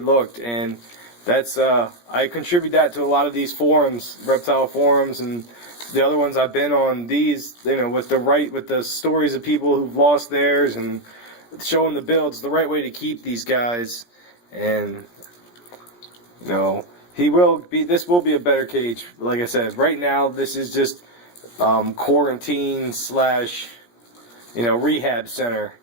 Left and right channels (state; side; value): late; right; 17 ms